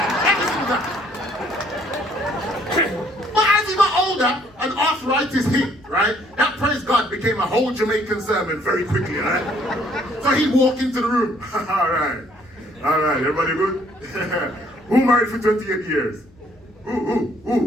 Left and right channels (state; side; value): noise; left; hum, 29 dB below the sound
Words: single time. But as he got older and arthritis hit, right, that praise God became a whole Jamaican sermon very quickly, right? So he'd walk into the room. All right, everybody good? Who married for 28 years?